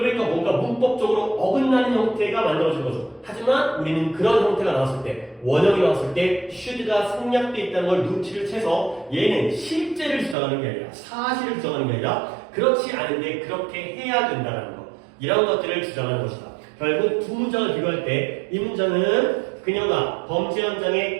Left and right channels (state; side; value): drops out; left; at 10.4 s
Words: 뭔가 문법적으로 어긋나는 형태가 만들어진 거죠. 하지만 우리는 그런 형태가 나왔을 때 원형이 나왔을 때 should가 생략되어 있다는 걸 눈치를 채서 얘는 실제를 주장하는 게 아니라 사실을 주장하는 게 아니라 그렇지 않은데 그렇게 해야 된다는 거 이런 것들을 주장하는 것이다. 결국 두 문장을 비교할 때 이 문장은 그녀가 범죄